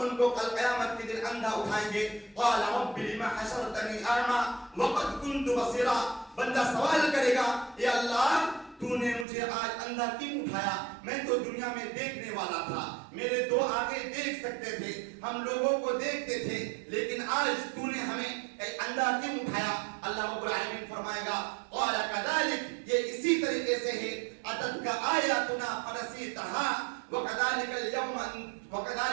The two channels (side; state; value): left; drops out; at 9.2 s